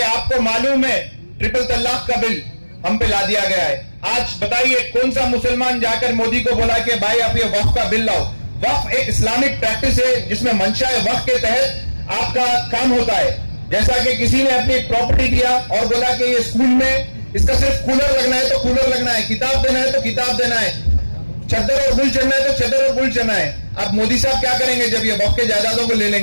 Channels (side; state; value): both; inverted; correlation -1.00